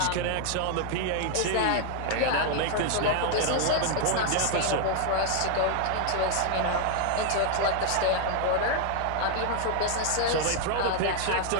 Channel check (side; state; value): both; different; correlation 0.00